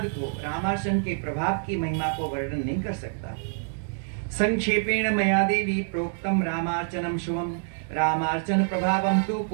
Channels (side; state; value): left; silent; digital silence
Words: को, रामार्चन के प्रभाव की महिमा को वर्णन नहीं कर सकता। संक्षेपेण मया देवी प्रोक्तम रामार्चनम शुभम रामार्चन प्रभावम तु